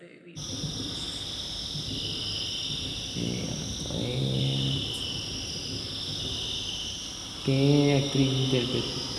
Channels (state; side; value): identical; both; correlation 1.00